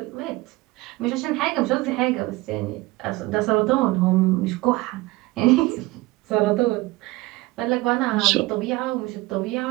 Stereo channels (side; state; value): left; quieter; 20.4 dB